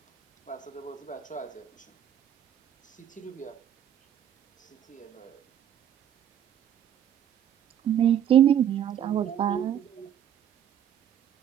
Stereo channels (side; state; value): left; quieter; 10.0 dB